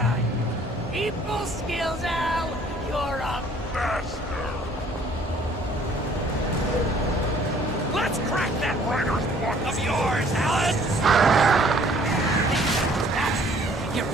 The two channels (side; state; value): both; normal; correlation 0.58